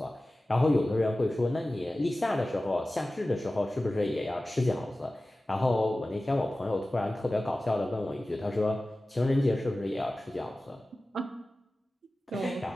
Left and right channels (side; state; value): both; normal; correlation 0.96